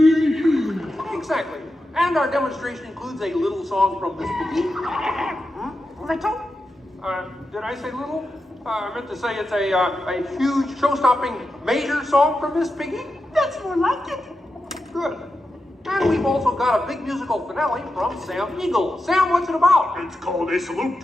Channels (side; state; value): both; normal; correlation 0.89